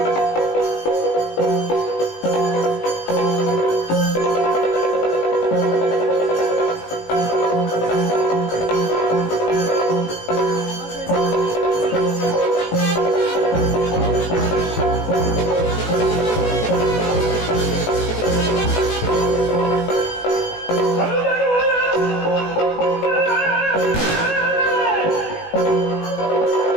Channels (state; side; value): late; right; 18 ms